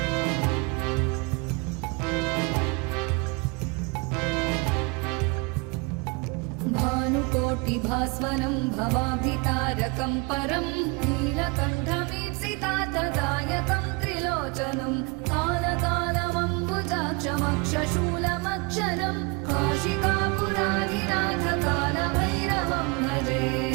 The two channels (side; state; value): left; quieter; 29.6 dB